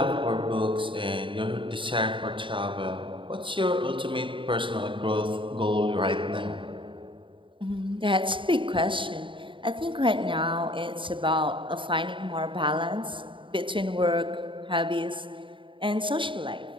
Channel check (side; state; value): left; late; 0.24 ms